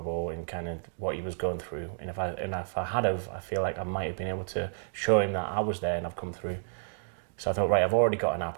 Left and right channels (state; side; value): silent; left; digital silence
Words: and kind of what he was going through. And if I had have, I feel like I might have been able to show him that I was there and I've come through. So I thought, right, I've already got an